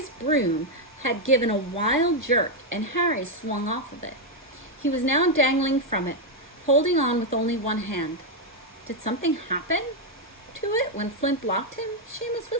broom had given a wild jerk, and Harry swung off of it. He was now dangling from it, holding on with only one hand. Did something happen to it when Flint blocked him? Seamus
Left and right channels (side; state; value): both; normal; correlation 0.01